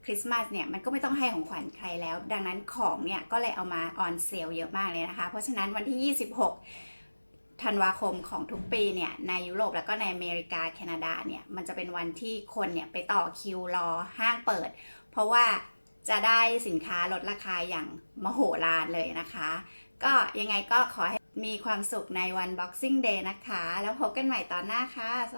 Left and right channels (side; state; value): both; inverted; correlation -1.00